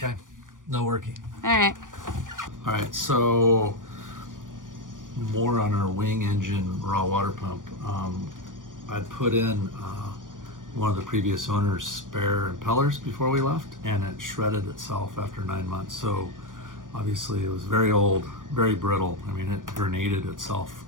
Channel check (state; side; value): late; left; 0.88 ms